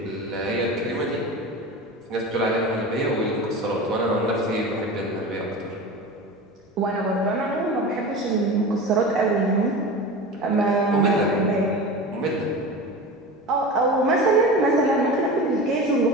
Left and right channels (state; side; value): normal; both; correlation 0.31